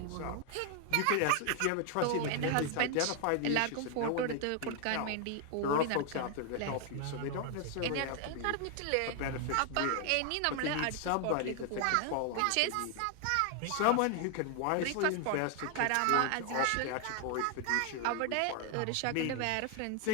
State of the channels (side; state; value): both; different; correlation 0.00